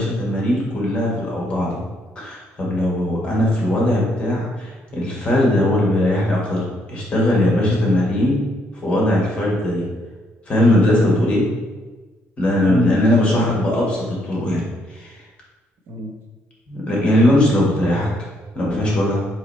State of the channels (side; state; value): both; normal; correlation 0.72